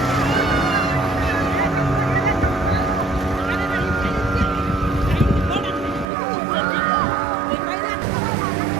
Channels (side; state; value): left; drops out; at 6.1 s